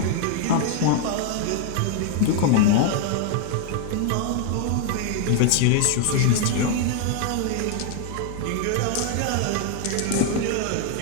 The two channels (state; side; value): different; both; correlation 0.00